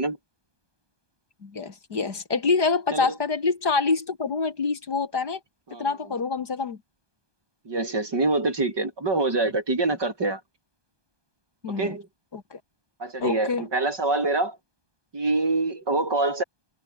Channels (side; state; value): left; late; 1.2 ms